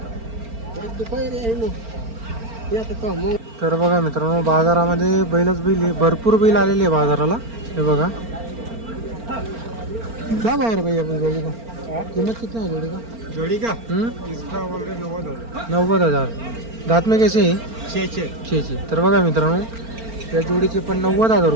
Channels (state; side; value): late; left; 4.4 ms